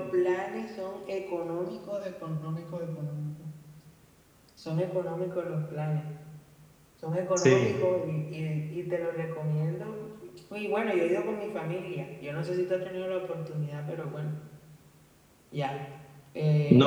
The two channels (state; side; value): identical; both; correlation 1.00